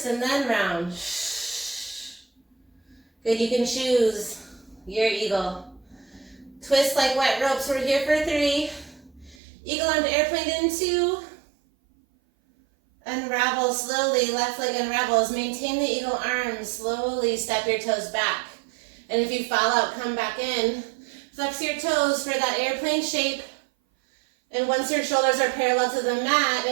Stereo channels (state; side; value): drops out; left; at 9.3 s